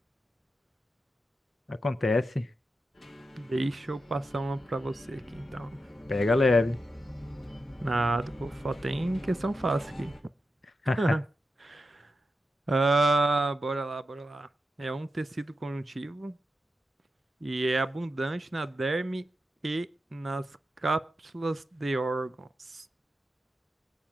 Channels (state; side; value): normal; both; correlation 0.89